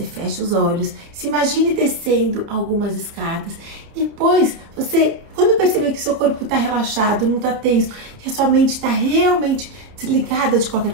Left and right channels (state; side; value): late; left; 30 ms